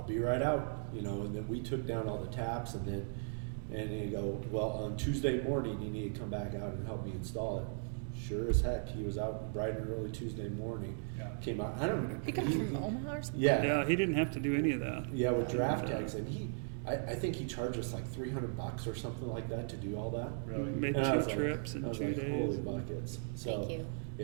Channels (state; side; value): silent; left; digital silence